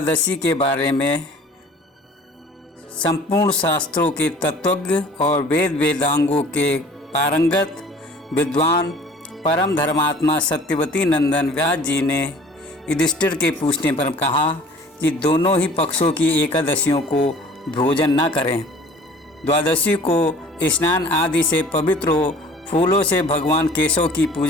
के बारे में संपूर्ण शास्त्रों के तत्वज्ञ और वेद वेदांगों के पारंगत विद्वान परम धर्मात्मा सत्यवती नंदन व्यास जी ने युधिष्ठिर के पूछने पर कहा कि दोनों ही पक्षों की एकादशियों को भोजन न करें। द्वादशी को स्नान आदि से पवित्र हो, फूलों से भगवान केशव की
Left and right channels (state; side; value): normal; both; correlation 0.48